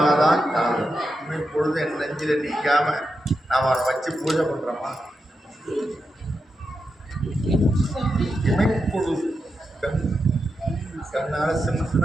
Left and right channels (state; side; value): normal; both; correlation 0.87